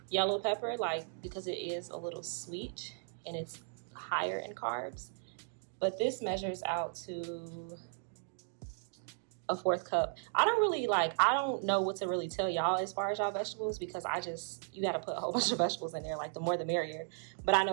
yellow pepper, like, because it is a little sweet and it's higher in carbs. But this measures out to a 4th cup. I don't know what to really tell y'all as far as y'all vegetables, because you got to put a whole bunch of vegetables in there, like the more the merrier. But I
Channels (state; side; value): silent; left; digital silence